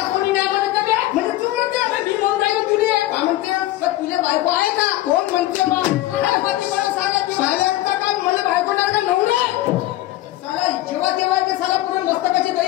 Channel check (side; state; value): right; quieter; 15.9 dB